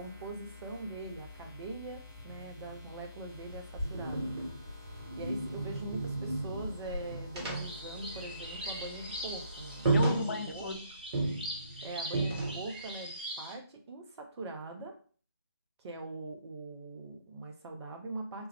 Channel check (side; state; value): both; inverted; correlation -0.67